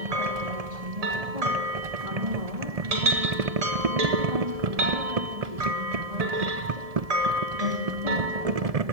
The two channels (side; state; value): left; late; 1.7 ms